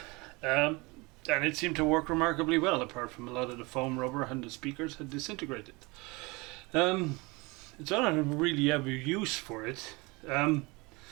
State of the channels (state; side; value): quieter; left; 25.6 dB